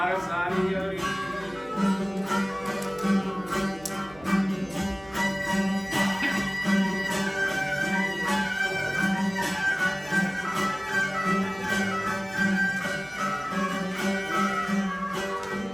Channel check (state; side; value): noise; right; hum, 22 dB below the sound